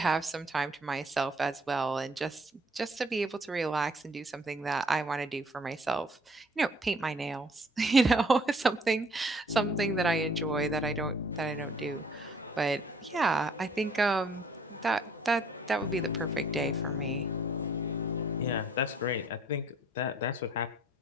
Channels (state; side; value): normal; both; correlation 0.59